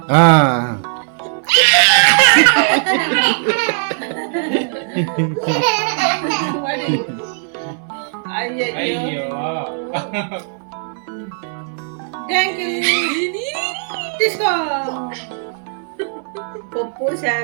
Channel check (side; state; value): left; silent; 63 dB below the other